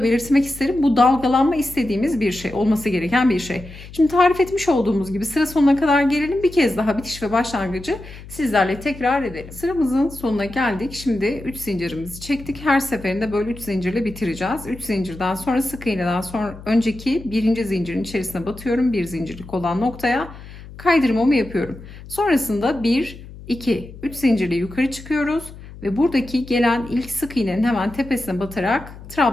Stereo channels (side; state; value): left; noise; hum, 16 dB below the sound